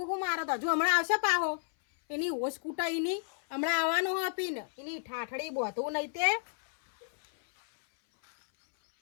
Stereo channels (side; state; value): right; silent; 57 dB below the other